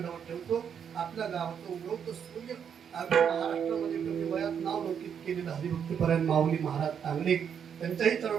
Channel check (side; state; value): left; quieter; 7.8 dB